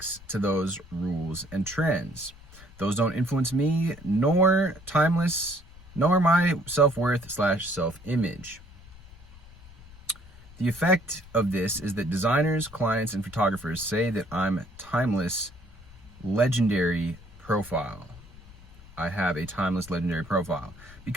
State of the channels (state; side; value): noise; left; rumble, 21 dB below the sound